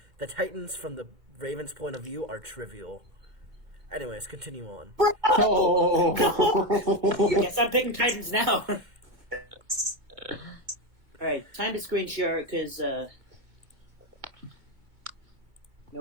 the Titans from the Ravens' point of view are trivial. Anyways, continue on. Oh. Yes, I'm picking Titans now. Alright, time to screen share because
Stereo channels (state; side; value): late; left; 2.1 ms